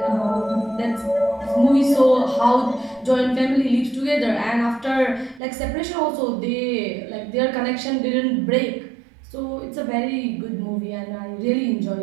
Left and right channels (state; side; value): drops out; left; at 5.4 s